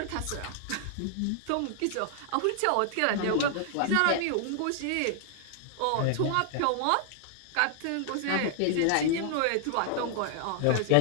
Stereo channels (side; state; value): both; different; correlation 0.00